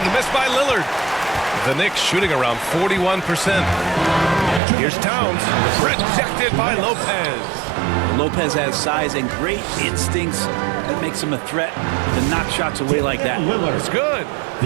the miss by Lillard. The Knicks shooting around 41%. Here's Towns. Rejected by Lopez. Lopez has size and great instincts. That makes him a threat to knock shots away like that. It's good.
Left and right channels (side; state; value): left; drops out; at 4.6 s